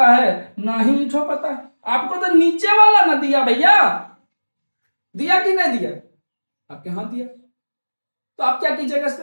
है, ना ही ईठो पता है। आपको तो नीचे वाला ना दिया भैया, दिया कि नहीं दिया, आपके हाथ दिया। तो आप क्या कीजिएगा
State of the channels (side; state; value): both; inverted; correlation -1.00